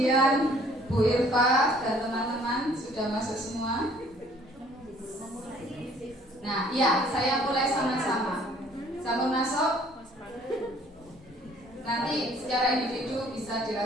Bu Irfa dan teman-teman sudah masuk semua. Nah, ya, saya mulai sama-sama. Sampun masuk? Nanti secara individu bisa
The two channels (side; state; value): both; normal; correlation 0.58